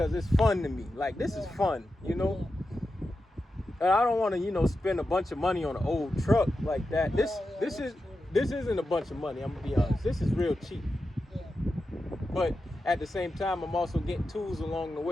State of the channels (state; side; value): normal; both; correlation 0.90